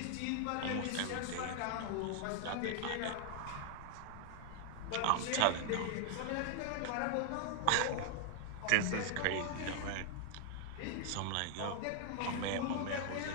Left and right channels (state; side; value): different; both; correlation 0.00